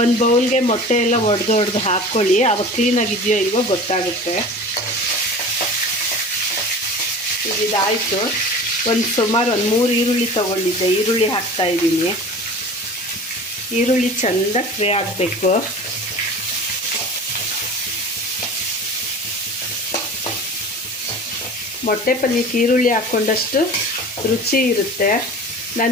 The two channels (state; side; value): normal; both; correlation 0.38